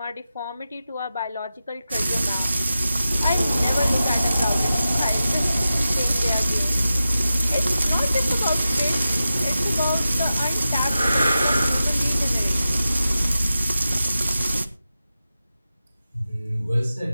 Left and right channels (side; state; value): both; inverted; correlation -0.92